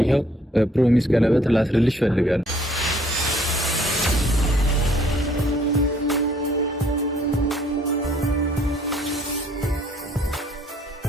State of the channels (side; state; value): both; normal; correlation 0.61